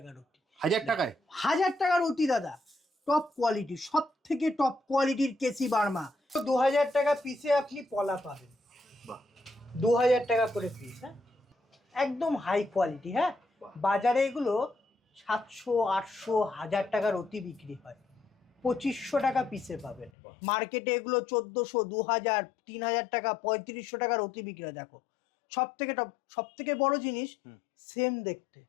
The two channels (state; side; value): drops out; right; at 20.1 s